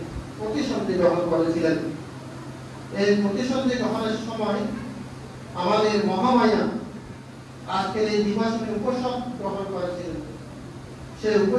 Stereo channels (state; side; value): identical; both; correlation 1.00